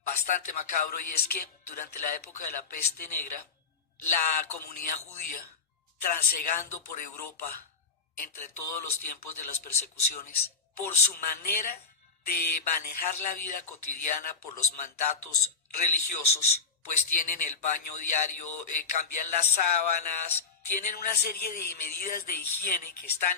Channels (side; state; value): right; quieter; 5.0 dB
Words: bastante macabro, y es que durante la época de la peste negra, la comunidad judía, transegando por Europa entre todos los tiempos de las persecuciones, por su manera de manejar la vida cotidiana, por los mandatos religiosos, pues tienen el baño diario, cambian las sábanas, tienen una serie de medidas de higiene que